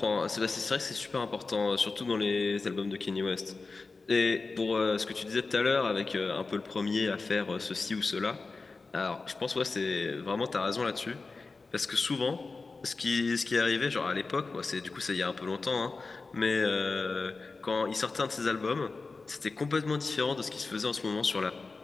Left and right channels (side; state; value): right; quieter; 4.0 dB